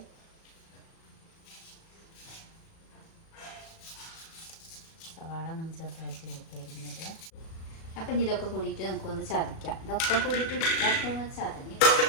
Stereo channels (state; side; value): late; right; 37 ms